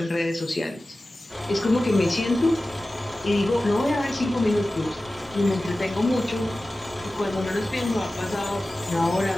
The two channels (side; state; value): both; normal; correlation 0.96